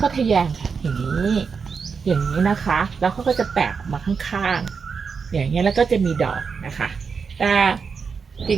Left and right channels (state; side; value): quieter; left; 5.6 dB